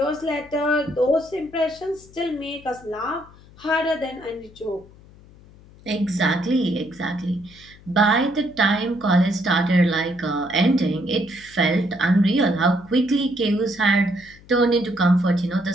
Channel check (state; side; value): noise; left; hum, 23 dB below the sound